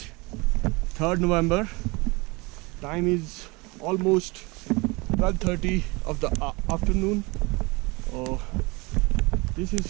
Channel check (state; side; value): quieter; left; 25.8 dB